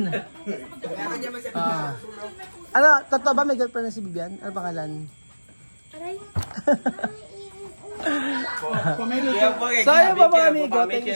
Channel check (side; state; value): both; inverted; correlation -1.00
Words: Ano, totoo ba may girlfriend na si Bibian? Ano pangalan? Aray. So ayun po mga amigo, thank